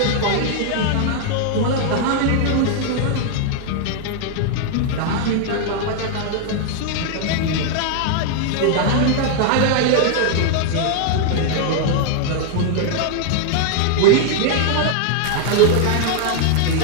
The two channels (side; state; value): both; different; correlation 0.00